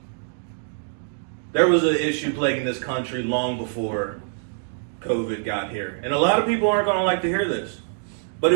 There was an issue plaguing this country long before COVID got here. And a lot of people aren't going to like to hear this. But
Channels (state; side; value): silent; left; 62 dB below the other